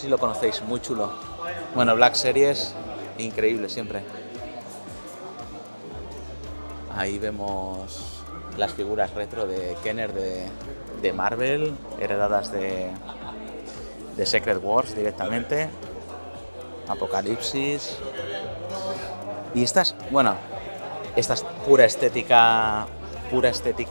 si lo conocéis, muy chulo. Bueno, Black Series, increíble siempre. Ahí vemos las figuras retro de Kenner de Marvel, heredadas de Secret Wars directamente. Apocalipsis. Y esta es pura estética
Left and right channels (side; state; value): both; inverted; correlation -1.00